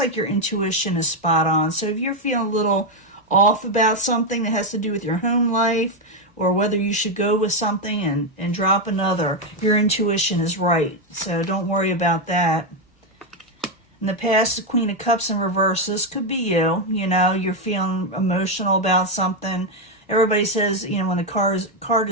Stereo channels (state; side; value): normal; both; correlation 0.05